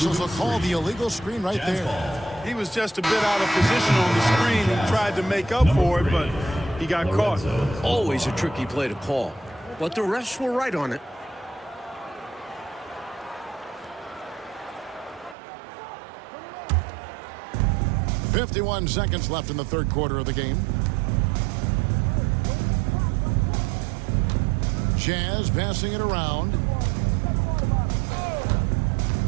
will call the illegal screen right there. He was just a bit out of position on the screen. He tried to make up for it, but he got caught. Always a tricky play to call. But the refs were right on it. .51 seconds left in the third quarter of the game. Jazz passing it around.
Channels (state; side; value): drops out; left; at 15.4 s